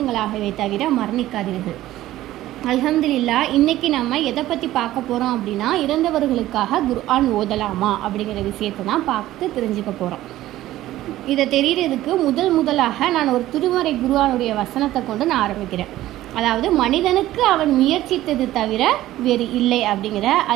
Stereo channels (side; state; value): left; quieter; 14.9 dB